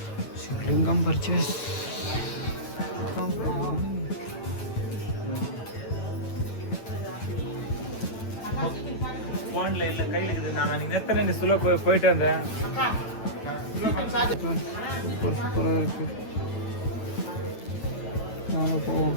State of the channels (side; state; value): right; late; 9.1 ms